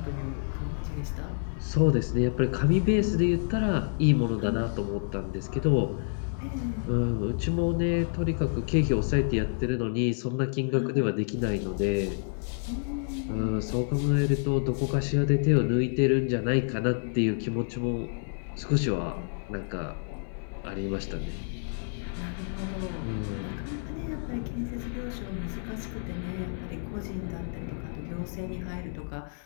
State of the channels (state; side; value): silent; right; digital silence